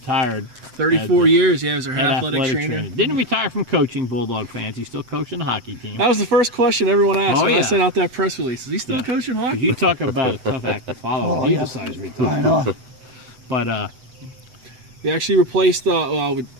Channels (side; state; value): left; late; 7.9 ms